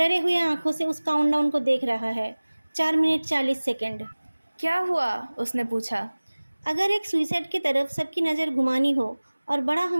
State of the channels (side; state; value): both; inverted; correlation -1.00